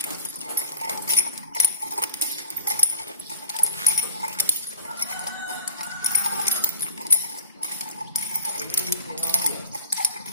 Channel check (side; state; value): both; inverted; correlation -0.42